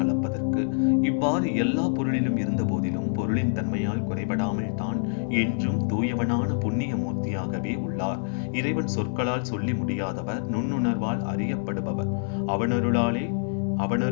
இவ்வாறு எல்லா பொருளிலும் இருந்த போதிலும் பொருளின் தன்மையால் குறைபடாமல் தான் என்றும் தூயவனான புண்ணிய மூர்த்தியாகவே உள்ளார். இறைவன் சொற்களால் சொல்லி முடியாதவர், நுண்ணுணர்வால் அறியப்படுபவர்.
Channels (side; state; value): right; silent; digital silence